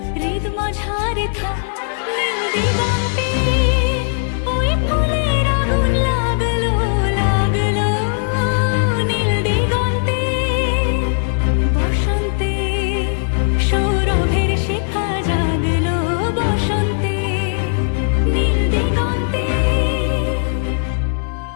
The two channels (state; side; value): silent; right; digital silence